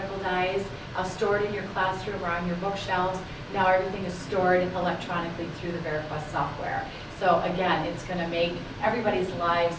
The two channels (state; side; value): identical; both; correlation 1.00